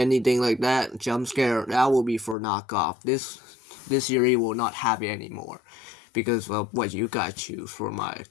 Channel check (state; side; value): drops out; right; at 2.4 s